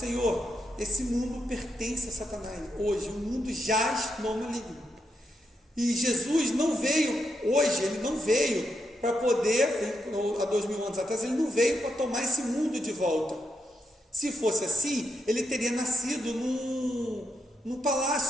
Esse mundo pertence a Satanás. Hoje o mundo jaz no maligno. E Jesus não veio hoje, ele não veio para poder, há 2000 anos atrás, ele não veio para tomar esse mundo de volta. Se fosse assim, ele teria nascido num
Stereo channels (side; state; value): both; normal; correlation 0.82